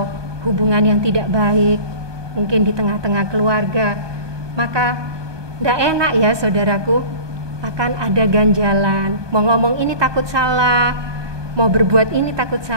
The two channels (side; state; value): left; late; 1.2 ms